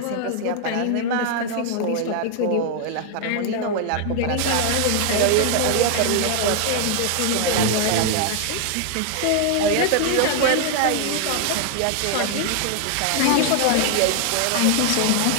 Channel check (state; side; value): different; both; correlation 0.00